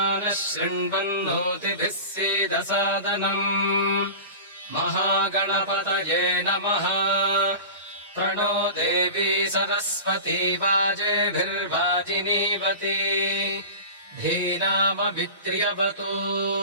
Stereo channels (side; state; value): both; inverted; correlation -0.32